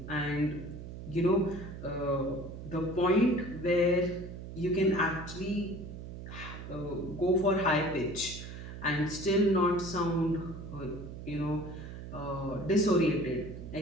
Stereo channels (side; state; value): right; noise; hum, 10 dB below the sound